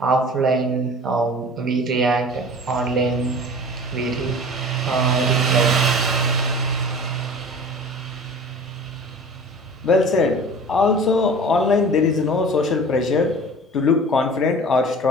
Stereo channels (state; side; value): normal; both; correlation 0.41